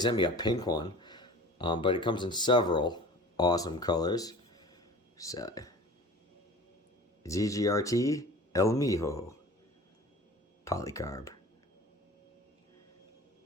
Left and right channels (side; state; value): both; normal; correlation 0.41